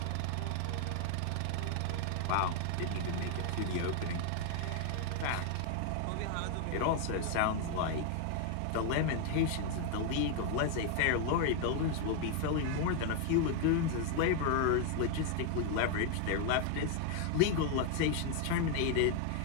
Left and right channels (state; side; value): different; both; correlation 0.00